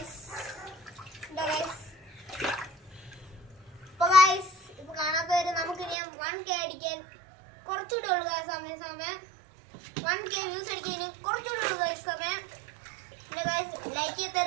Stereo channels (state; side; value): drops out; left; at 6.0 s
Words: ഇപ്പൊ കാണാത്തവര് നമുക്ക് ഇനി 1K അടിക്കാൻ കുറച്ചുകൂടെ ഉള്ളു സമയം 1K വ്യൂസ് അടിക്കാൻ ഇനി കുറച്ചുകൂടെ ഉള്ളു സമയം. പിന്നെ ലൈക്ക്